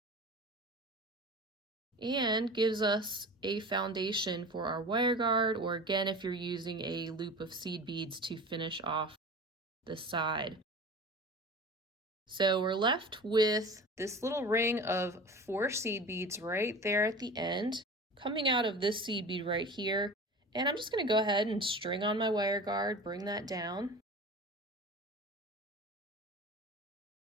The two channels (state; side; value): normal; both; correlation 0.36